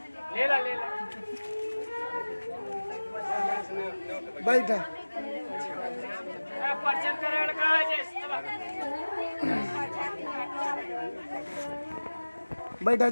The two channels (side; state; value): both; inverted; correlation -1.00